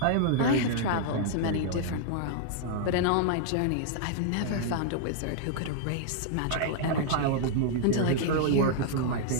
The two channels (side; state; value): both; different; correlation -0.01